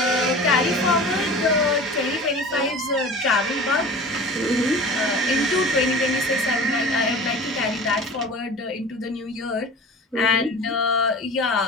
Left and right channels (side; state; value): both; normal; correlation 0.39